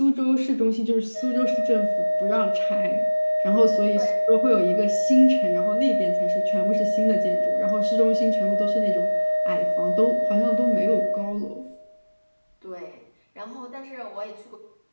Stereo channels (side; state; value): both; inverted; correlation -1.00